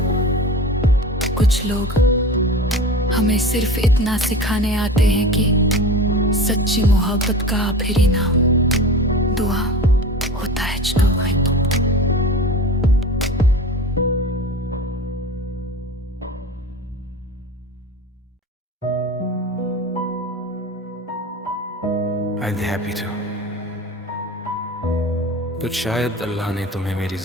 कुछ लोग हमें सिर्फ इतना सिखाने आते हैं कि सच्ची मोहब्बत का आखिरी नाम दुआ होता है। I'd be happy to। तो शायद अल्लाह ने तुम्हें मेरी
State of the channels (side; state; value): both; normal; correlation 0.33